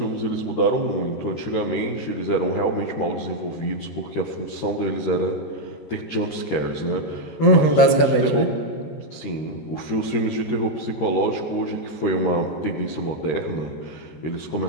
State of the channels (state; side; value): late; right; 13 ms